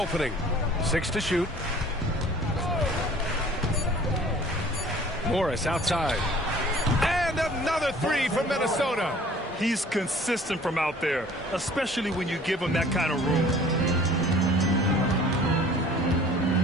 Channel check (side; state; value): both; normal; correlation 0.50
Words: 6 to shoot. Morris outside. And another 3 from Minnesota. He's consistent from out there, especially when you give him that kind of room.